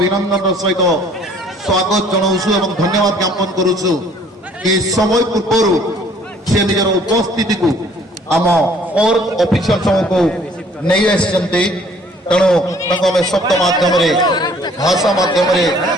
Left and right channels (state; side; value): normal; both; correlation 0.57